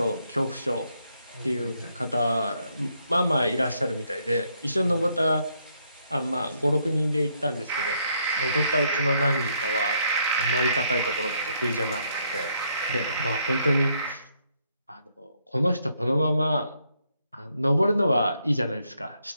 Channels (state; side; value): inverted; both; correlation -0.73